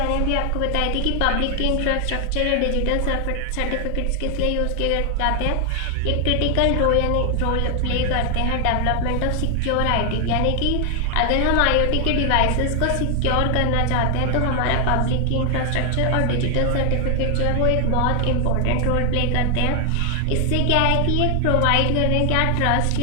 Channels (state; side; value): different; both; correlation 0.00